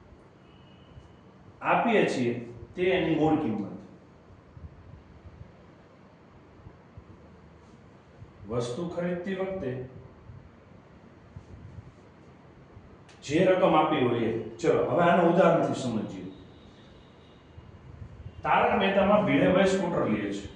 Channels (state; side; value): identical; both; correlation 1.00